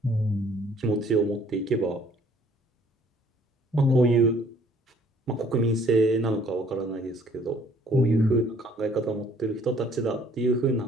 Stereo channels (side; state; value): both; normal; correlation 0.60